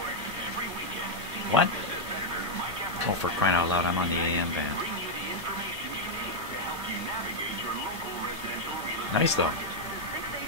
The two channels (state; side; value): normal; both; correlation -0.01